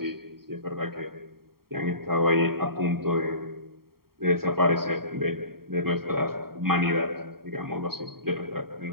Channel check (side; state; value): left; late; 0.93 ms